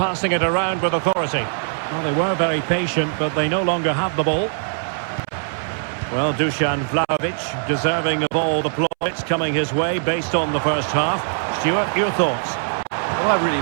it around with authority. Well, they were very patient, but they no longer have the ball. Well, Dusan Vlahovic deserving of all the plaudits coming his way based on the first half. Stuart, your thoughts? Well, I really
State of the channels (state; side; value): silent; left; 65 dB below the other